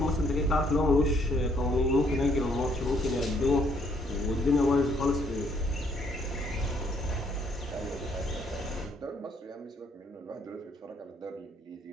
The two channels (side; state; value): both; normal; correlation 0.67